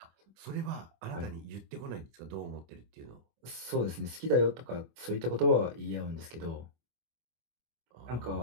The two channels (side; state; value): left; late; 25 ms